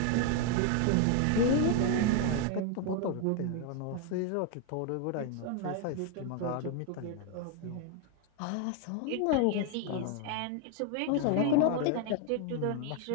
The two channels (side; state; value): both; different; correlation 0.01